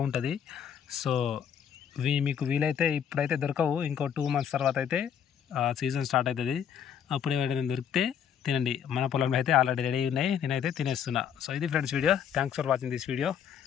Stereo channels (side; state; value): right; quieter; 8.4 dB